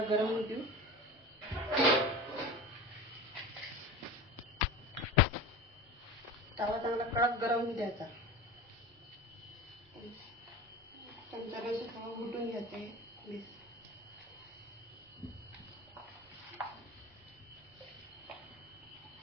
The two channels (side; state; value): both; normal; correlation 0.32